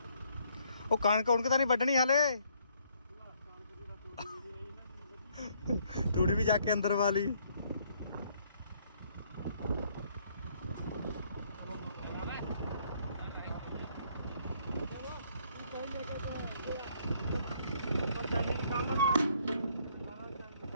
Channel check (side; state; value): both; inverted; correlation -0.67